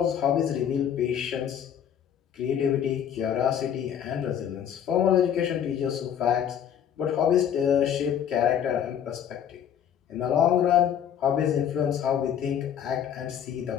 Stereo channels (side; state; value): right; quieter; 9.1 dB